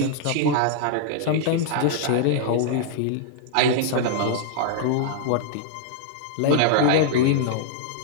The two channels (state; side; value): different; both; correlation -0.01